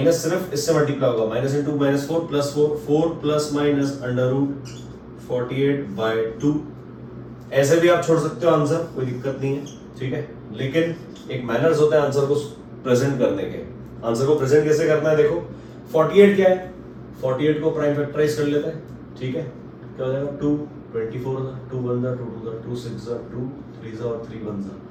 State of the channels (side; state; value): both; identical; correlation 1.00